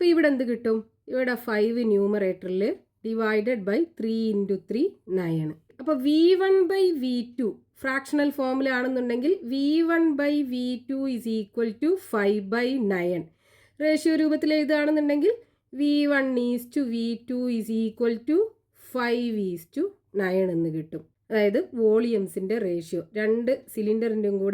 ഇവിടെ എന്ത് കിട്ടും? ഇവിടെ 5 ന്യൂമറേറ്ററിൽ ഡിവൈഡഡ് ബൈ 3 × 3 9. അപ്പോൾ V1/V2 ഫ്രാക്ഷണൽ ഫോമിലാണെന്നുണ്ടെങ്കിൽ V1/V2 = 5/9. റേഷ്യോ രൂപത്തിൽ എഴുതുകയാണെന്നുണ്ടെങ്കിൽ V1:V2 = 5:9 എന്ന് കിട്ടും. അതായത് വോളിയംസിൻ്റെ റേഷ്യോ, രണ്ട് സിലിണ്ടറിൻ്റെയും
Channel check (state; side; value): identical; both; correlation 1.00